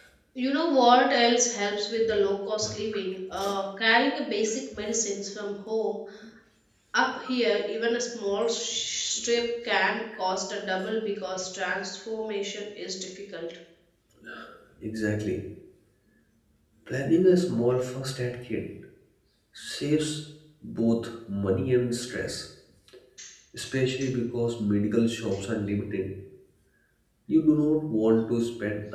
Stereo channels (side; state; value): both; identical; correlation 1.00